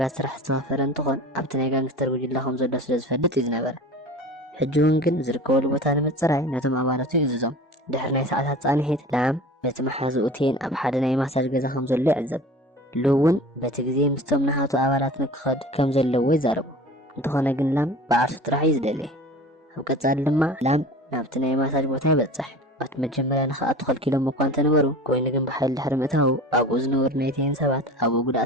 سرح استغفران تخون ابتنا يقان كتر وجي اللهم زلو سلز فدت يزنا بلا حجون كن زركو اللو بتانا متسرعي ناتم عبارتو يززم دحرنا ساعتها صانحيت لام بيتم حازوتين ابحادنا يماساج قزا خمزو اللي عزب لون بتجزي مستمنا هاتو أولات نكخد كم زلوا يزاربو انتخونا قن لام بعرف تراح يزدلي وكتار لما لام نابتنا يماساج بوتا بتصح وقت مجملا نخا أدخل كيلو مقوان تنورو كوين قن بحال حرمتهو أبو زنور نيتين سبات أبو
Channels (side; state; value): both; normal; correlation 0.39